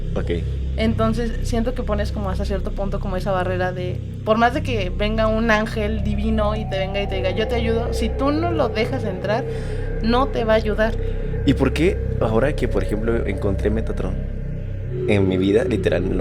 Okay. Entonces siento que pones como hasta cierto punto como esa barrera de, por más de que venga un ángel divino y te venga y te diga yo te ayudo, si tú no lo dejas entrar, no te va a ayudar. ¿Y por qué ahora que por ejemplo encontré Metatron en mi vida, literal,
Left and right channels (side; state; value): both; identical; correlation 1.00